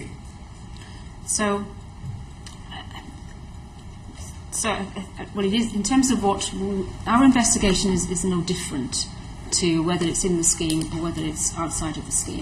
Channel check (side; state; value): both; identical; correlation 1.00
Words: So well, it is in terms of what our investigation is no different to whether it's in the scheme or whether it's outside of the